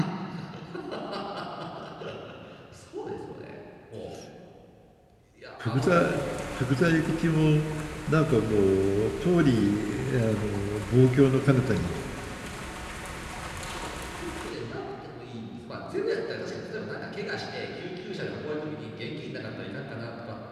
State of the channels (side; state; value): both; identical; correlation 1.00